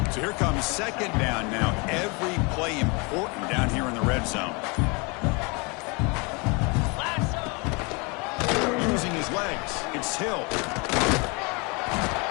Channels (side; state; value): right; quieter; 29.9 dB